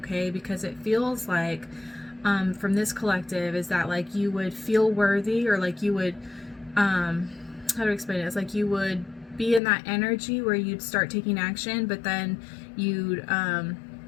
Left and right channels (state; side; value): drops out; right; at 9.6 s